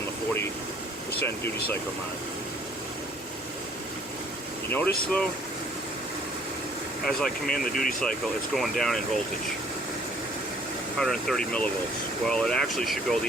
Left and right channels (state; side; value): normal; both; correlation 0.59